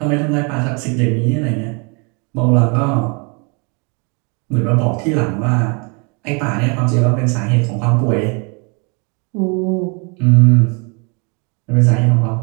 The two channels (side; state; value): left; quieter; 33.3 dB